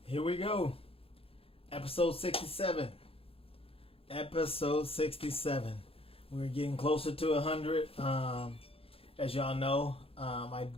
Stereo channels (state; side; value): late; right; 0.27 ms